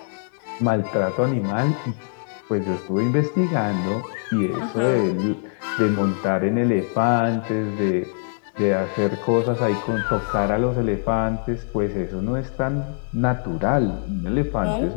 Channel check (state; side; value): silent; right; 62 dB below the other